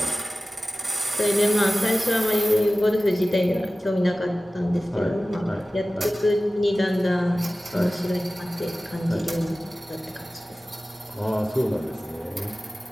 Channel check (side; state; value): both; normal; correlation 0.96